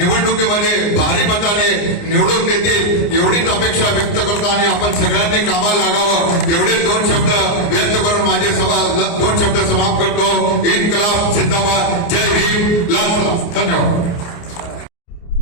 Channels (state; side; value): late; right; 29 ms